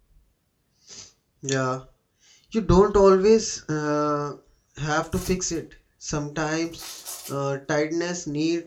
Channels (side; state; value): both; identical; correlation 1.00